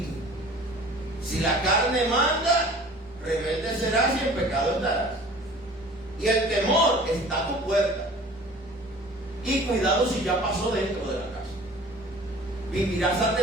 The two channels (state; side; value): normal; both; correlation 0.46